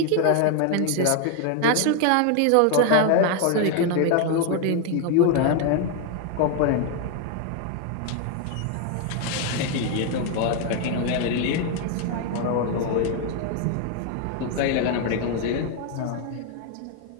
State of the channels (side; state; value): both; different; correlation 0.01